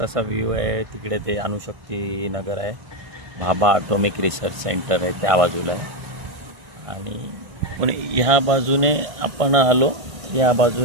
असा व्ह्यू आहे. तिकडे ते अणुशक्ती नगर आहे, भाभा ॲटॉमिक रिसर्च सेंटर आहे त्या बाजूला आहे. आणि पण ह्या बाजूने आपण आलो, या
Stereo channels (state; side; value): late; left; 1.5 ms